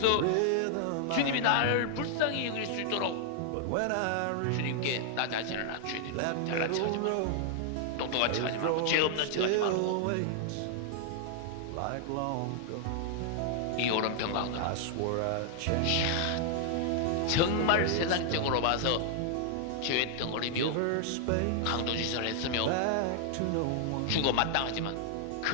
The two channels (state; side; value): different; both; correlation 0.00